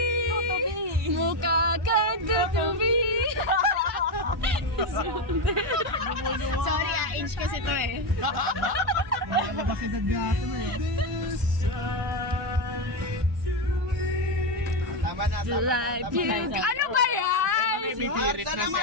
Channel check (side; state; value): both; normal; correlation 0.09